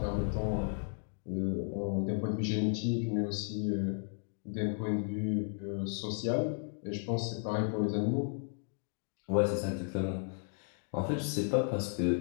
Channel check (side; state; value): right; silent; 55 dB below the other